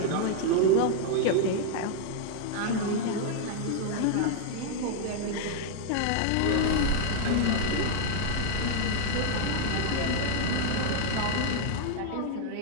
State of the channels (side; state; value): both; different; correlation 0.00